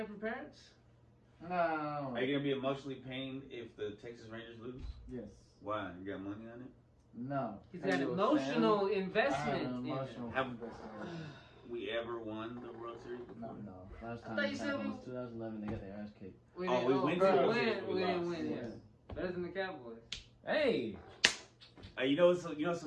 from parents? No. Are you gonna be emotionally pained if the Texas Rangers lose? Yes. Why? You got money on it? No. He's Are got you a emotional fan? I have investment. an in it. emotional Have- investment. We ever won the World Series? No. No, last I time thought you this said happened we- was 2011. They got their ass kicked. We Oh, didn't, we went to the we World didn't Series, we win. lost. Yeah. Better than the Cowboys. Hey, You know it's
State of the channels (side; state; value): both; identical; correlation 1.00